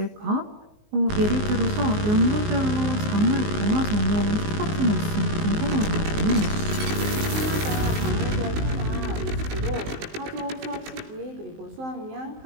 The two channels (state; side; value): late; left; 19 ms